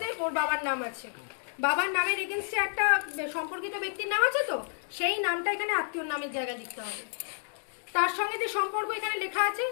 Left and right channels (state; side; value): silent; right; digital silence